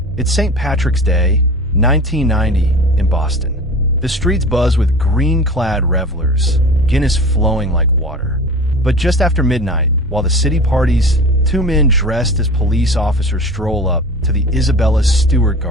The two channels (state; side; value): normal; both; correlation 0.37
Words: It's St. Patrick's Day, 1990, in Boston. The streets buzz with green-clad revelers, Guinness flowing like water. But just after midnight, while the city parties, two men dressed as police officers stroll up to the Isabella Stewart